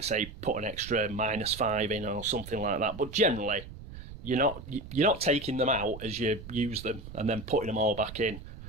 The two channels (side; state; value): right; noise; rumble, 13 dB below the sound